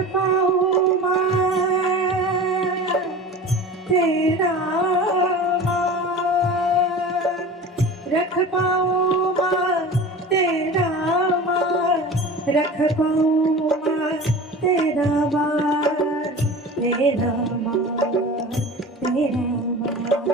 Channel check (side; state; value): both; normal; correlation 0.36